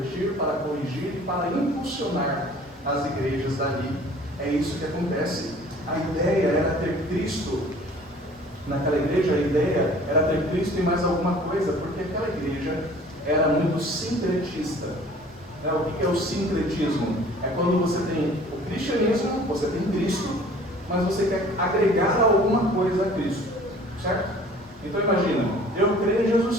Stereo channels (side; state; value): both; normal; correlation 0.50